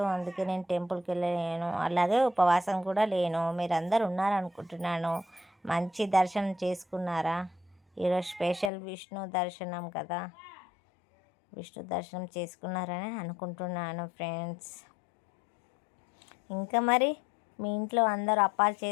అందుకే నేను టెంపుల్కి వెళ్ళలేను, అలాగే ఉపవాసం కూడా లేను. మీరు అందరు ఉన్నారనుకుంటున్నాను. మంచి దర్శనం చేసుకున్నారా? ఈరోజు స్పెషల్ విష్ణు దర్శనం కదా, విష్ణు దర్శనం చేసుకున్నారని అనుకుంటున్నాను ఫ్రెండ్స్. ఇంకా మరి మీ ఇంట్లో అందరూ అప్పాలు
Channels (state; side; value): drops out; right; at 8.7 s